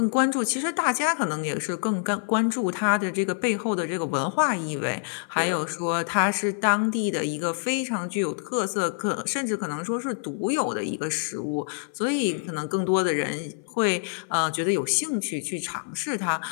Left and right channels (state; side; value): silent; right; 56 dB below the other